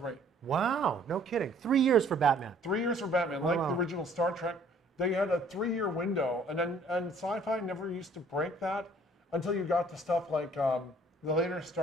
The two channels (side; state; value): both; normal; correlation 0.57